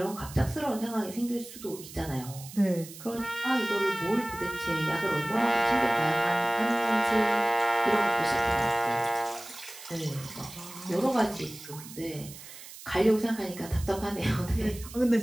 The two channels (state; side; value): noise; right; hiss, 15 dB below the sound